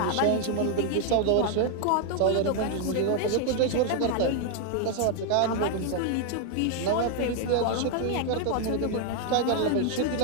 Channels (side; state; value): both; different; correlation 0.00